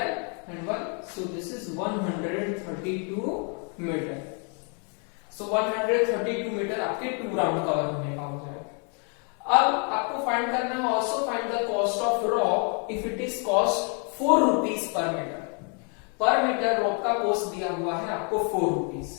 and 1, so this is 132 metre. So 132 metre आपके 2 राउंड कवर होने का हो जाएगा. अब आपको फाइंड करना है also find the cost of rock if it is cost 4 rupees per metre. Per metre rock का कॉस्ट दिया हुआ है आपको 4 rupees.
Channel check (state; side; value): quieter; right; 38.3 dB